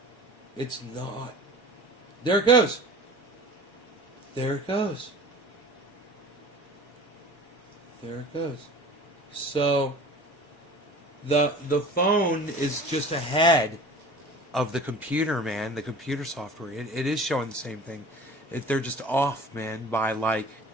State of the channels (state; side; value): normal; both; correlation 0.42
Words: it's not. There it goes. There it goes. There it goes. So the phone is just ahead of the computer, man. The computer software. It is showing the same thing. They're just off, man, by like